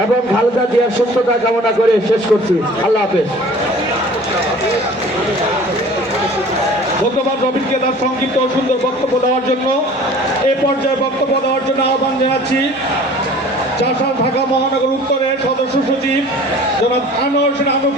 এবং খালেদা জিয়ার সুস্থতা কামনা করে শেষ করছি। আল্লাহ হাফেজ। ধন্যবাদ রবিনকে তার সংক্ষিপ্ত ও সুন্দর বক্তব্য দেওয়ার জন্য। এ পর্যায়ে বক্তব্য দেওয়ার জন্য আহ্বান জানাচ্ছি চাষার ঢাকা মহানগর উত্তরের সদস্য সচিব জনাব আনোয়ার হোসেন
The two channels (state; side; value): normal; both; correlation 0.46